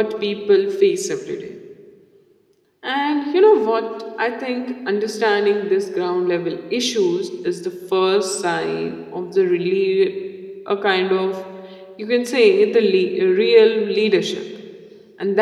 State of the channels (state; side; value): identical; both; correlation 1.00